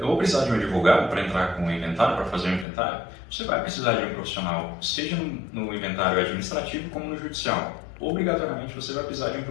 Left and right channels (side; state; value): right; drops out; at 2.7 s